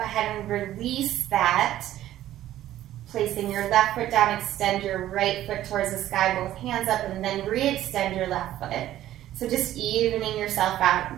ahead and release that. Placing your left foot down, extend your right foot towards the sky, both hands up, and then re-extend your left foot. So just evening yourself out.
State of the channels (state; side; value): quieter; left; 13.3 dB